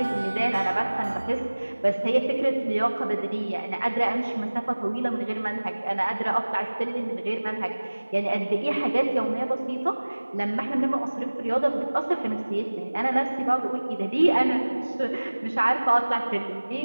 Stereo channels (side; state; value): both; inverted; correlation -1.00